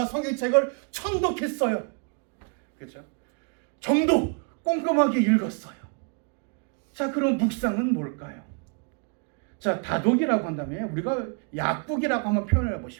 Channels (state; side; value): quieter; left; 38.2 dB